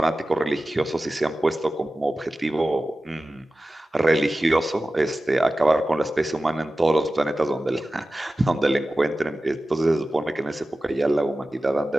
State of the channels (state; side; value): normal; both; correlation 0.95